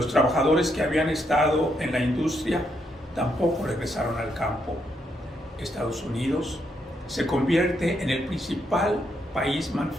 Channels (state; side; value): normal; both; correlation 0.78